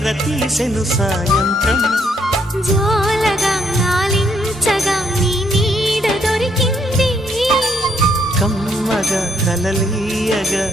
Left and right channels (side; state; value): both; normal; correlation 0.71